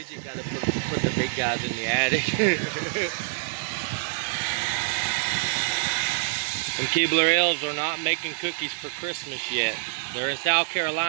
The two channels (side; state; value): left; silent; digital silence